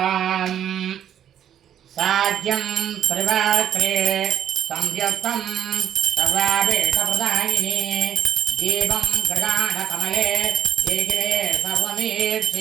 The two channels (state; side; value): quieter; left; 10.0 dB